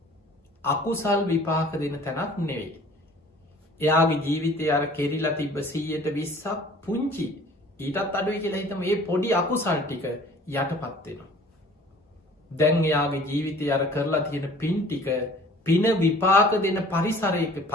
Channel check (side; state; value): both; normal; correlation 0.50